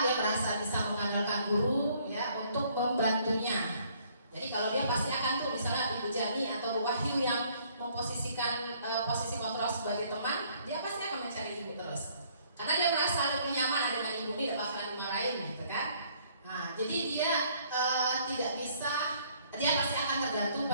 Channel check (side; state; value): both; inverted; correlation -0.63